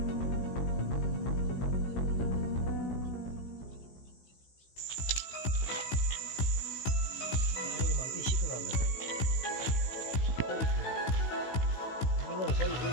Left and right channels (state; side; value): late; right; 16 ms